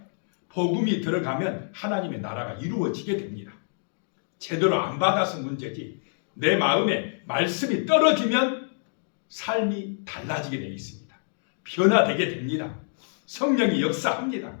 복음이 들어가면 하나님의 나라가 이루어지게 됩니다. 제대로 안 받아서 문제지 내 마음에 말씀이 떨어지면 삶이 달라지게 되어 있습니다. 변화되게 됩니다. 성령이 역사합니다.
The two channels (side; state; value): right; silent; digital silence